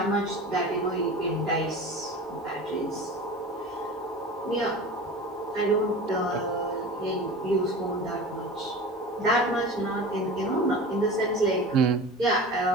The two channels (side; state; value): both; normal; correlation 0.34